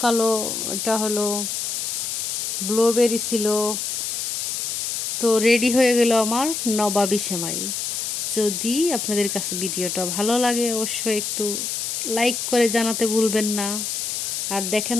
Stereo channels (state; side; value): noise; left; hiss, 2 dB below the sound